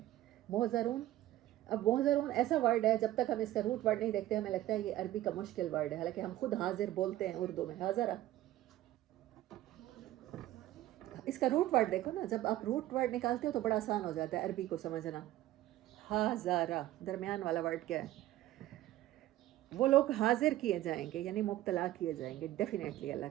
محضرون، اب محضرون ایسا ورڈ ہے جب تک ہم اس کا روٹ ورڈ نہیں دیکھتے ہمیں لگتا ہے یہ عربی کا مشکل ورڈ ہے، حالانکہ ہم خود حاضر بولتے ہیں اردو میں. حاضرہ، اس کا روٹ ورڈ دیکھو نا، جب آپ روٹ ورڈ نکالتے ہو تو بڑا آسان ہو جاتا ہے عربی کو سمجھنا. حاضرہ، درمیان والا ورڈ کیا ہے؟ وہ لوگ حاضر کیے جائیں گے یعنی مبتلا کیے جائیں گے ڈیفینیٹلی. اللہ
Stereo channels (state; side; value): quieter; left; 14.8 dB